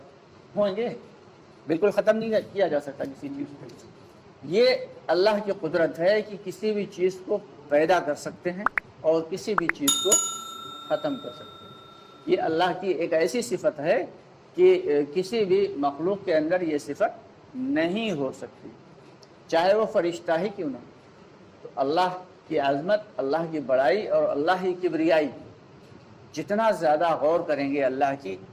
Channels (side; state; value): both; identical; correlation 1.00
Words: होंगे, बिल्कुल ख़त्म नहीं किया जा सकता किसी चीज़ को। ये अल्लाह की कुदरत है कि किसी भी चीज़ को पैदा कर सकते हैं और किसी भी चीज़ को ख़त्म कर सकते हैं। ये अल्लाह की एक ऐसी सिफत है कि किसी भी मखलूक के अंदर ये सिफत नहीं हो सकती, चाहे वो फरिश्ता ही क्यों ना। तो अल्लाह की अज़मत, अल्लाह की बड़ाई और अल्लाह की किबरियाई, जितना ज़्यादा गौर करेंगे अल्लाह की